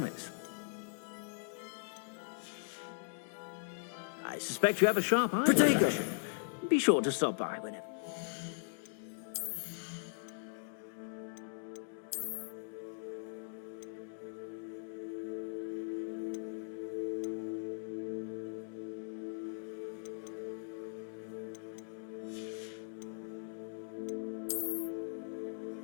I suspect you have a sharp eye. Protego! Be sure to stop by whenever.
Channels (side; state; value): right; silent; digital silence